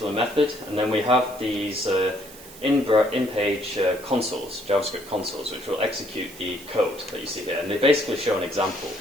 method, and then we have these in-page consoles, JavaScript consoles, which will execute the code that you see here. And they basically show an example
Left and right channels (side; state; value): right; noise; hiss, 18 dB below the sound